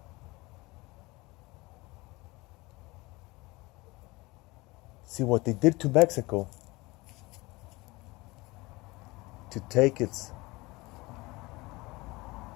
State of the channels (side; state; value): right; quieter; 22.6 dB